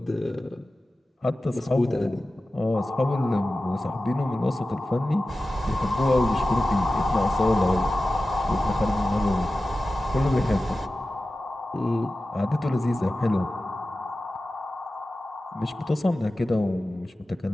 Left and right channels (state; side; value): normal; both; correlation 0.95